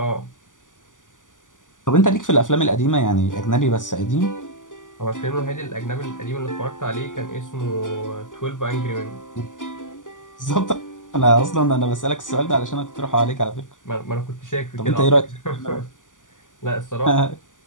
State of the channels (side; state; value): right; late; 0.87 ms